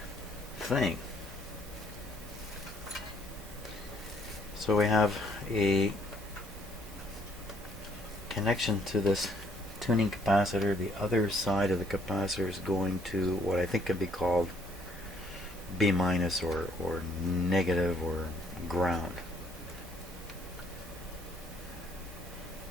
thing? So we have a connection to this tuning capacitor. The other side of the capacitor is going to what I think could be called B minus or negative or ground.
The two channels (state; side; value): normal; both; correlation 0.65